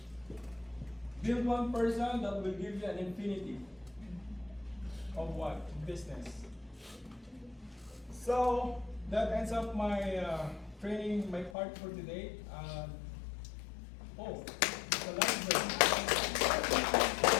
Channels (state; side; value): drops out; right; at 11.6 s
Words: Build one person that will give you an infinity of what? Business. So that ends up my training, my part for today. It's a last break.